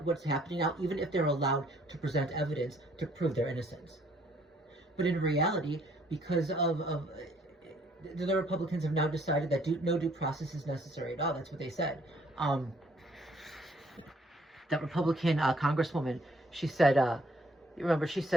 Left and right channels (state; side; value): normal; both; correlation 0.64